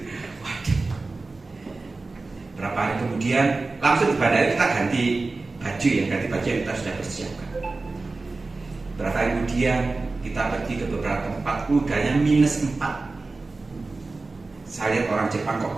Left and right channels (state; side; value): quieter; left; 3.6 dB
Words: Waduh. Berapa hari kemudian langsung di bandara kita ganti baju ya, ganti baju yang kita sudah persiapkan. Berapa hari kemudian kita pergi ke beberapa tempat, udaranya -4. Saya lihat orang Jepang kok